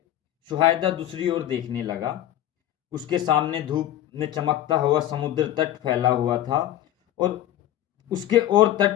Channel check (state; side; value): quieter; right; 12.3 dB